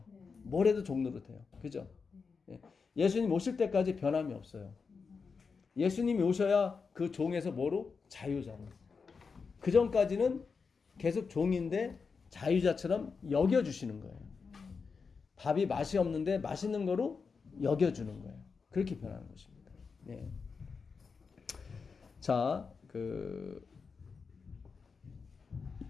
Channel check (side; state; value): right; quieter; 5.2 dB